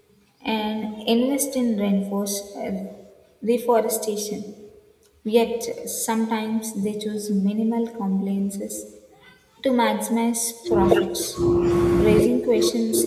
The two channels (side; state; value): both; identical; correlation 1.00